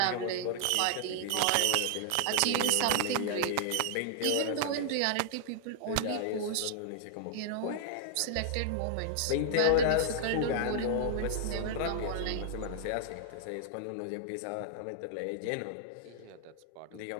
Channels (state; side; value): different; both; correlation -0.01